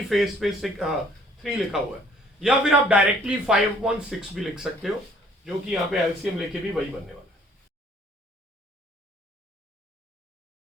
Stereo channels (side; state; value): both; normal; correlation 0.58